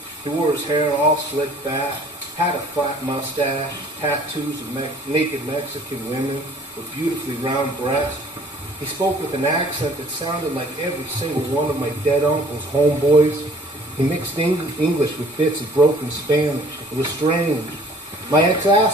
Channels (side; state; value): both; normal; correlation 0.55